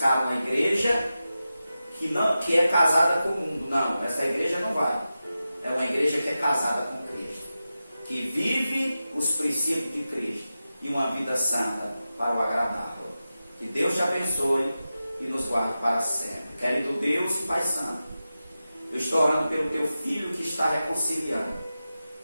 uma igreja que é casada com o mundo. Não, essa igreja não vai. É uma igreja que é casada com Cristo, que vive os princípios de Cristo e uma vida santa para o agradá-lo. Que Deus te abençoe e nos guarde para sempre. Querido Deus e Pai Santo, eu estou orando pelo teu filho que está reconciliando,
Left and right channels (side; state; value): both; inverted; correlation -0.93